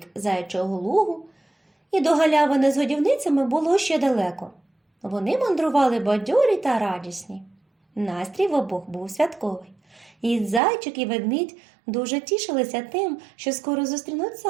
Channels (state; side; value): drops out; left; at 10.6 s